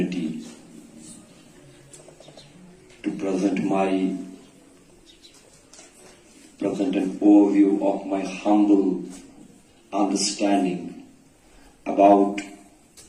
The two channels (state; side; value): identical; both; correlation 1.00